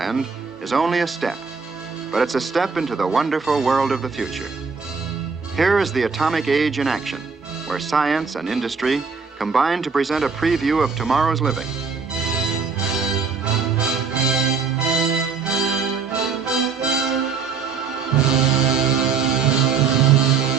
is only a step, but it's a step into the wonderful world of the future. Here is the atomic age in action, where science and industry combine to present a preview of tomorrow's living.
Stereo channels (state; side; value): quieter; left; 5.3 dB